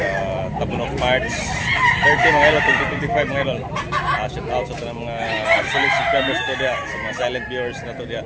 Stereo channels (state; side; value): identical; both; correlation 1.00